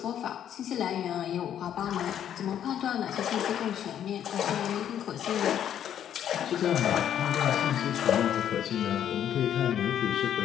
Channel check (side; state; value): right; quieter; 9.9 dB